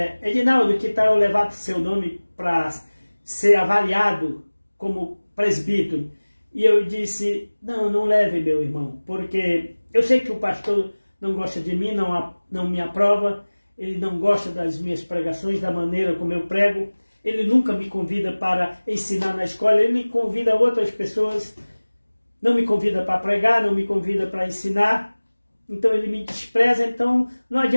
Edinaldo, que tal eu levar seu nome para ser avaliado como presbítero? E eu disse, não leve, meu irmão, porque eu sei que o pastor não gosta de mim, não me aprova, ele não gosta das minhas pregações, da maneira como eu prego, ele nunca me convida para ensinar na escola, ele me convida outras pessoas, não me convida para pregar, não me convida para ensinar, então ele me despreza, então não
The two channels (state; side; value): inverted; both; correlation -1.00